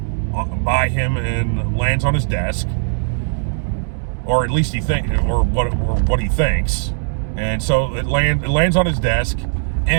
by him and lands on his desk, or at least what he thinks, and so it lands on his desk.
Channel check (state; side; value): silent; left; digital silence